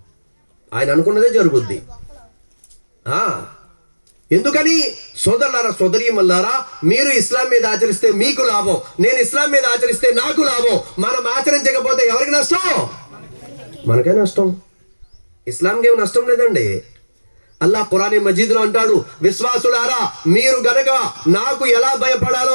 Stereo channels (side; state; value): both; inverted; correlation -1.00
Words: ఆయన అనుకున్నదే జరుగుద్ది. ఎందుకని? సోదరులారా, సోదరీమల్లారా, మీరు ఇస్లాం మీద ఆచరిస్తే మీకు లాభం, నేను ఇస్లాం మీద ఆచరిస్తే నాకు లాభం. మనం ఆచరించకపోతే ఎవరికి నష్టం? మనకే నష్టం. ఇస్లాంకి ఏమి నష్టం లేదండి. అల్లాహ్ ఖురాన్ మజీద్లో అంటాడు, విశ్వాసులారా, మీరు గనక నాకు ఎలా భయపడాలో